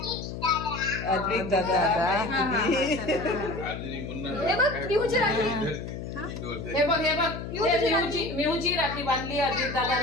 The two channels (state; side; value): noise; left; hum, 8 dB below the sound